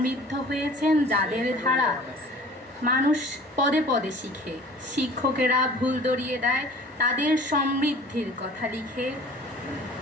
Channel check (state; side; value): normal; both; correlation 0.46